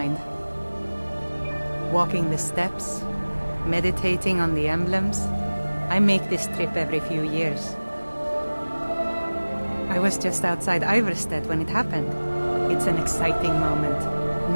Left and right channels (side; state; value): both; inverted; correlation -1.00